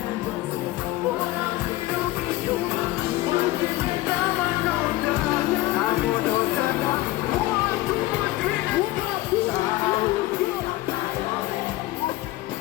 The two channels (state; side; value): quieter; right; 17.6 dB